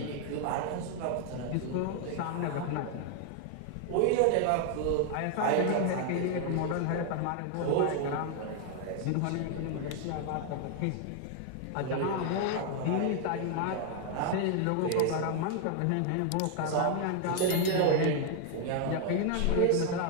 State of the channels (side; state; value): both; different; correlation 0.00